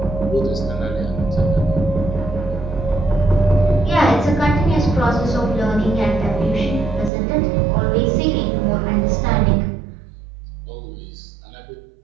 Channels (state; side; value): drops out; left; at 7.1 s